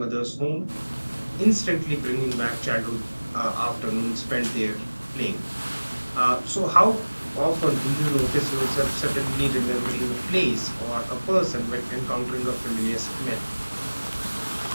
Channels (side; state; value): both; inverted; correlation -1.00